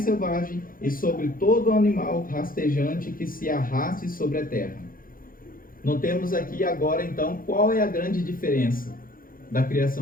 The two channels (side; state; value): right; late; 0.41 ms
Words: selvagens e sobre todo animal rastejante que se arraste sobre a terra. Notemos aqui agora então qual é a grande diferença da